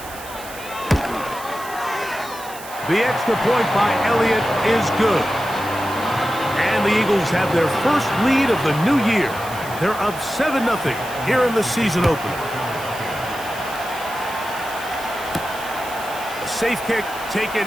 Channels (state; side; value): noise; right; hiss, 15 dB below the sound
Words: The extra point by Elliott is good. And the Eagles have their first lead of the new year. They're up 7-0 here in the season opener. A safe kick taken